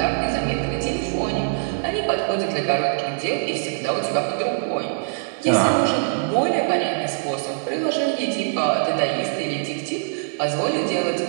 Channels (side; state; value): left; silent; digital silence